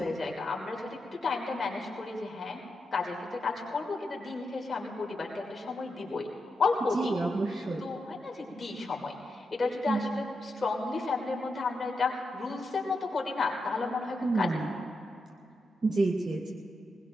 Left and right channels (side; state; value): both; normal; correlation 0.86